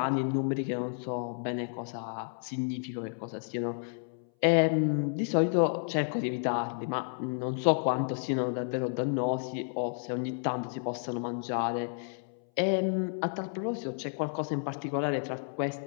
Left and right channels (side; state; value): right; silent; 57 dB below the other